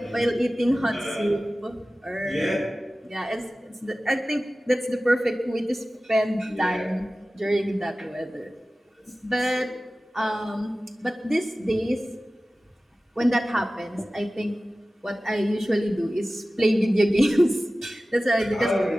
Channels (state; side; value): normal; both; correlation 0.96